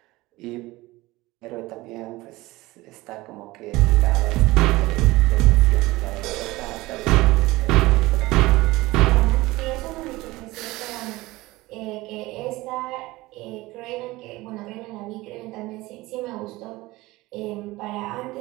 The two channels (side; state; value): left; quieter; 19.8 dB